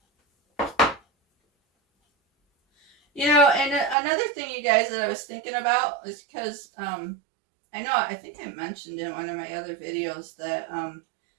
You know, and another thing, you guys, that I was thinking about is because I think I mentioned in one of my other videos that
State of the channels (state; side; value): drops out; left; at 4.0 s